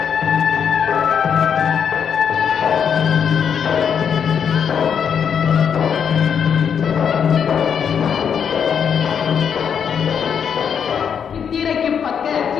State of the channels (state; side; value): quieter; right; 7.5 dB